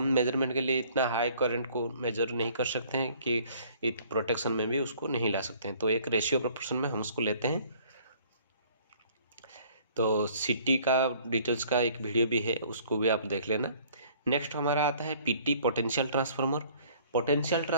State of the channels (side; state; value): both; inverted; correlation -0.56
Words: मेजरमेंट के लिए इतना हाई करंट को मेजर नहीं कर सकते हैं कि प्रोटेक्शन में भी उसको नहीं ला सकते हैं। तो एक रेशियो प्रोपोर्शन में हम उसको लेते हैं। तो सिटी का डिटेल्स का एक वीडियो भी है, उसको भी आप देख लेना। नेक्स्ट हमारा आता है PT, potential transformer. Potential